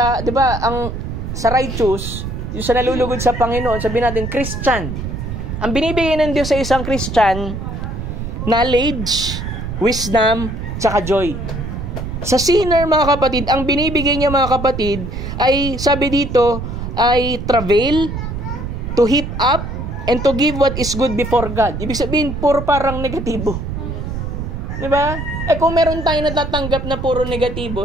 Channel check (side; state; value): right; noise; rumble, 6 dB below the sound